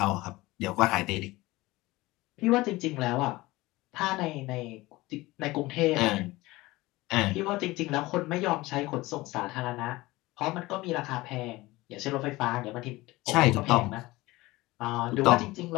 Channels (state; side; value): quieter; right; 20.0 dB